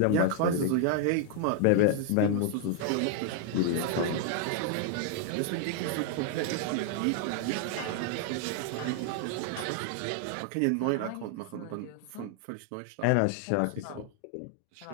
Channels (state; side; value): different; both; correlation 0.00